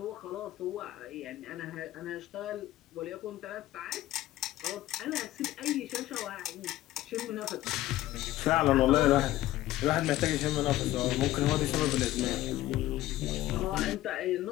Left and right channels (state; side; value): quieter; right; 15.3 dB